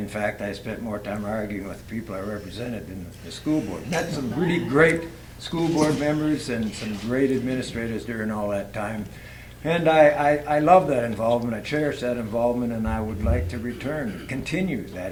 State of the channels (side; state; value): both; identical; correlation 1.00